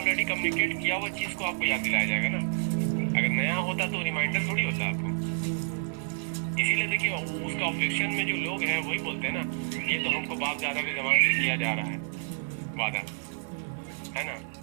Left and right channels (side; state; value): left; silent; digital silence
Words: कम्युनिकेट किया हुआ चीज को आपको याद दिलाया जाएगा ना। अगर नया होता तो रिमाइंडर थोड़ी होता आपको। इसीलिए देखिए उसका ऑब्जेक्शन में जो लोग हैं वही बोलते हैं ना, ये तो हमको बाप दादा के जमाने से किया जा रहा है वादा, है ना।